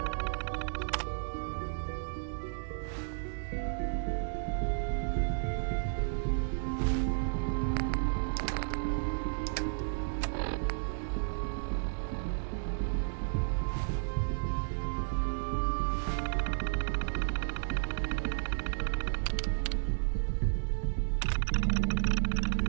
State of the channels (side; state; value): left; silent; 56 dB below the other